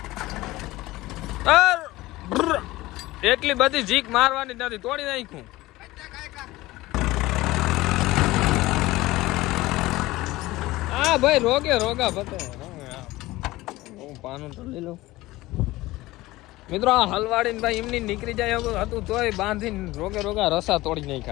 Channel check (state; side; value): quieter; right; 18.6 dB